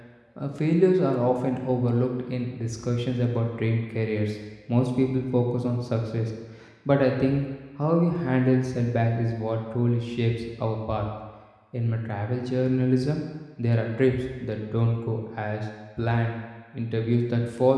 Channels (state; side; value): identical; both; correlation 1.00